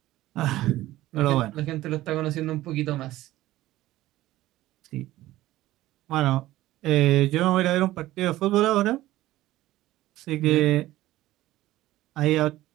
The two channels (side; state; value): left; quieter; 16.0 dB